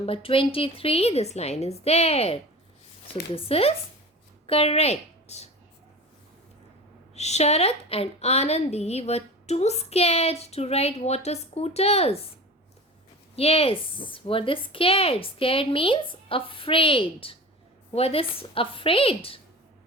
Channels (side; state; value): both; normal; correlation 0.35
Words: 23, this line is there. So this is correct. Sharath and Anandi were too scared to ride water scooters. Yes, were they scared? Scared means afraid. Were they afraid?